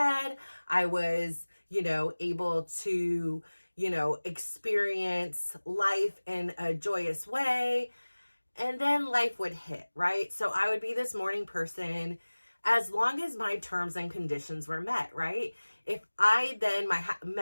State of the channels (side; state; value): both; inverted; correlation -1.00